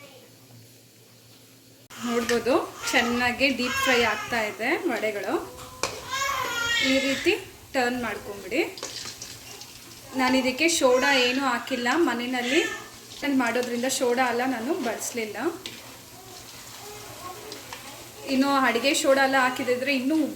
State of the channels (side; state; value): both; identical; correlation 1.00